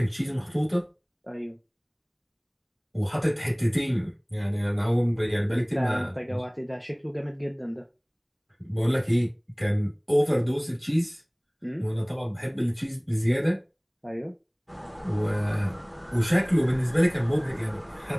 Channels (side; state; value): both; identical; correlation 1.00